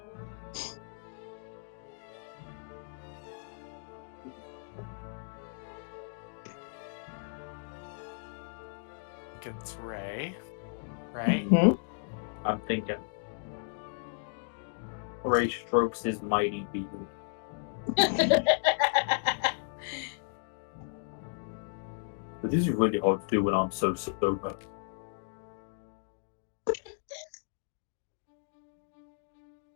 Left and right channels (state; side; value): silent; right; digital silence